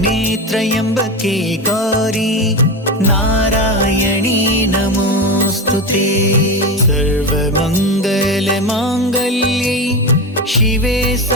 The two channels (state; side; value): normal; both; correlation 0.20